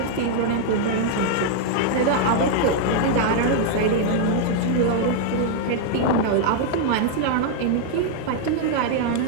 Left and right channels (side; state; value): both; different; correlation 0.00